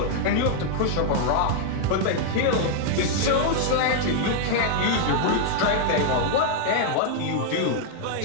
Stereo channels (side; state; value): both; different; correlation 0.00